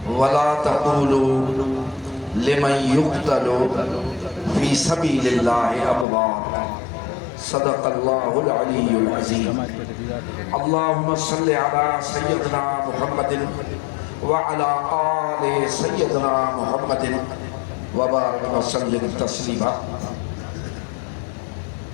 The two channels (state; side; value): drops out; right; at 6.1 s